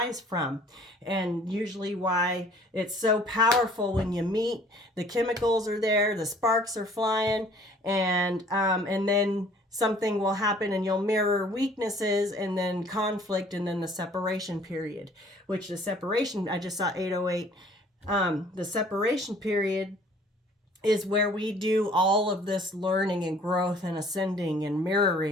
from. And usually why it's so powerful when you meet, the chemicals are there, the sparks are flying, and then something will happen and you'll mirror weaknesses, and then conflict, and then the separation period, which the separation, I just saw 808, the separation period is where we do all of this learning and growth and ascending and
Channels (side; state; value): both; normal; correlation 0.54